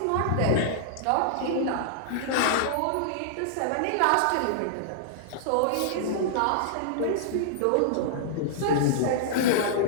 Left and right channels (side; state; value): both; different; correlation -0.01